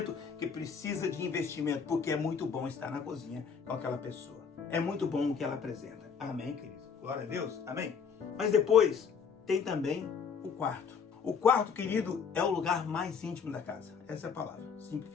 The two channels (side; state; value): right; quieter; 6.3 dB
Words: que precisa de investimento, porque é muito bom estar na cozinha com aquela pessoa. É muito bom o que ela apresenta. Amém, querido? Glória a Deus. Amém? Mas depois tem também o quarto. O quarto, querido, é o lugar mais íntimo da casa. Essa é a palavra,